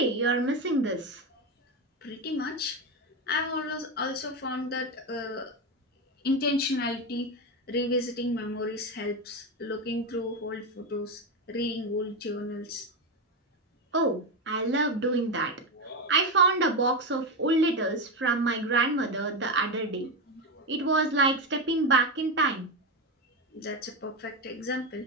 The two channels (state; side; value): normal; both; correlation 0.13